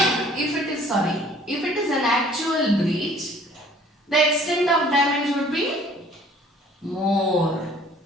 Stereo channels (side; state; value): both; normal; correlation 0.54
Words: if it is an actual breach, the extent of damage would be more.